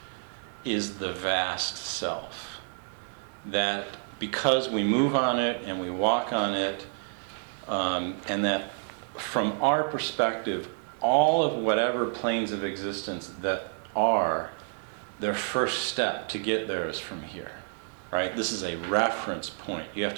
is the vast self. That because we move on it and we walk on it, and that from our perspective, all of whatever planes of existence that are, their first step to get there is from here, right? This is a reference point. You have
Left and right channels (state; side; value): silent; left; digital silence